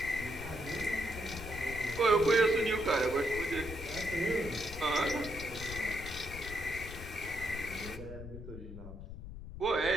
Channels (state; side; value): noise; left; rumble, 10 dB below the sound